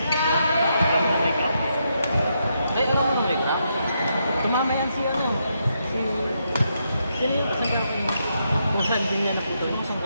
Alam mo make up. Ay, alam mo make up? Tumama yan si ano? Sino yung kasagap niya? Kung saan din niya naputo?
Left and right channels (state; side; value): inverted; both; correlation -0.80